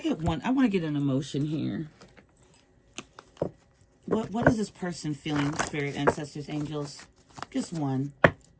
get one? I want to get an emotion here. What is this person feeling, spirit, ancestors, angels? Just one.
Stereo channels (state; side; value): identical; both; correlation 1.00